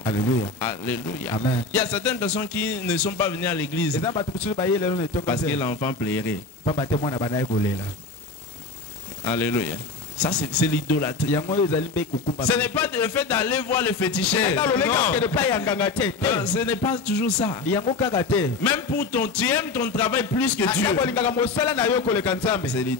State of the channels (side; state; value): right; quieter; 3.9 dB